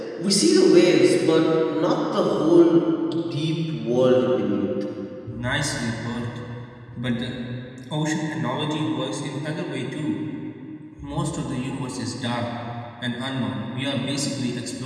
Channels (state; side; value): identical; both; correlation 1.00